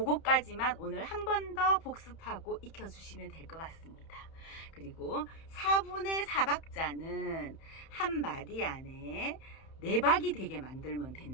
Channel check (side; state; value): right; late; 31 ms